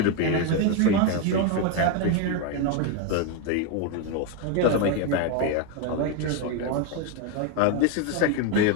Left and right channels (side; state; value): both; different; correlation 0.02